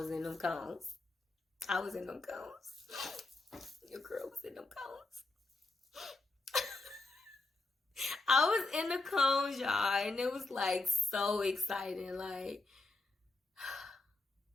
in them cones. Your girl was in them cones. I was in the cones, y'all, and it was like so exciting. Like,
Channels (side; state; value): right; quieter; 3.3 dB